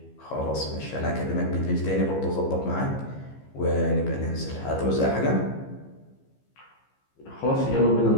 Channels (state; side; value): late; right; 15 ms